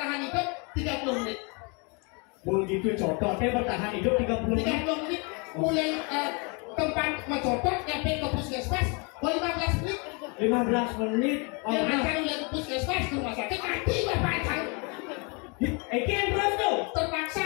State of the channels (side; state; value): right; quieter; 32.6 dB